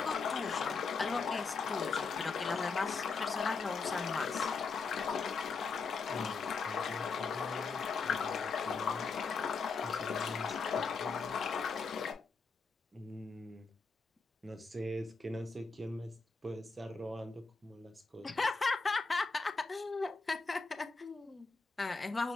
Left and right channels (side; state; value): right; quieter; 4.5 dB